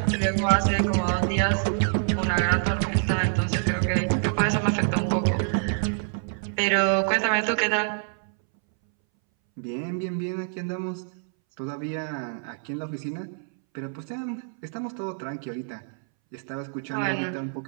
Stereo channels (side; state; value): left; silent; 61 dB below the other